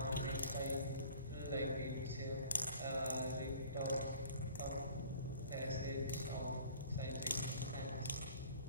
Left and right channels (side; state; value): both; inverted; correlation -0.48